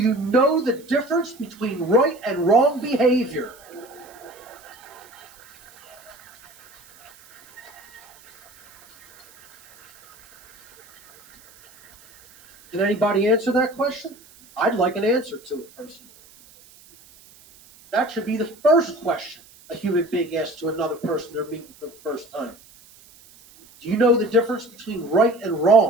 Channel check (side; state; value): right; noise; hiss, 25 dB below the sound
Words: know the difference between right and wrong behavior? Can anybody answer that question? I'd like an answer to it personally. That should be the first question a human being asks to another person they're meeting for the first time. Do you know the difference between right and